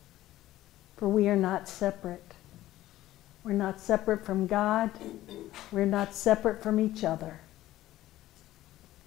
for we are not separate. We're not separate from God. We're not separate from each other.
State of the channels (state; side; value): quieter; right; 14.9 dB